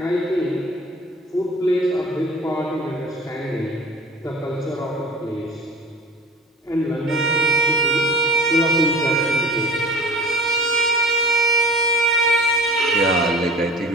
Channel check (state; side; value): normal; both; correlation 0.40